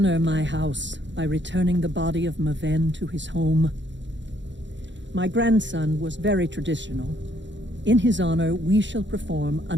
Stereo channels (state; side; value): late; left; 0.53 ms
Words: my house by returning the body of Maven to his home. My grandson was very traditional. In his honor, we shall perform